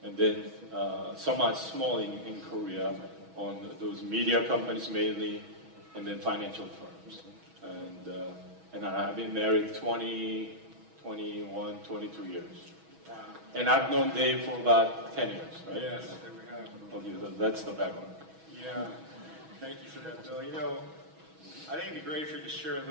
and then somewhat small in Korea, on those media companies mainly, and then financial firms. And I've been married 20, 21, 22 years. Wow. And I've known Dave for about 10 years, right? Yes, we have. Okay, so that's the background. Yeah, thank you for that, Bill. I think it'd be great for you to share a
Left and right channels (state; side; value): late; left; 6.2 ms